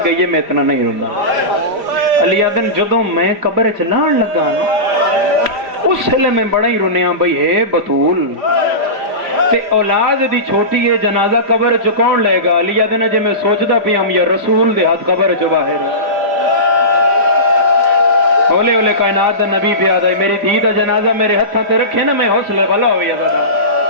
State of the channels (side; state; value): left; late; 5.0 ms